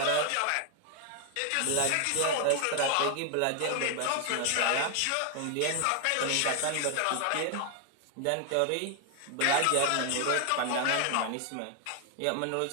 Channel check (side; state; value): both; different; correlation 0.00